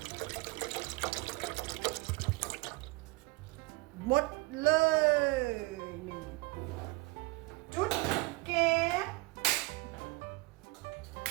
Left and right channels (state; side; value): quieter; left; 23.7 dB